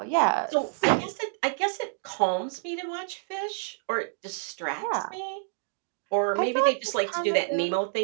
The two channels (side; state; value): left; silent; digital silence